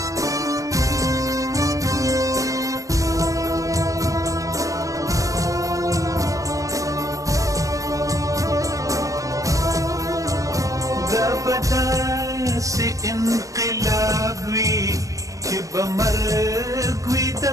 دا به داسې انقلاب وي چې به مرګ وي د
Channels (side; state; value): left; late; 0.16 ms